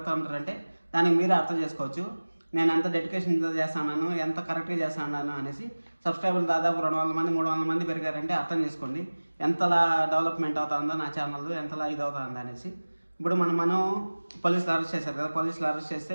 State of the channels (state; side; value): inverted; both; correlation -1.00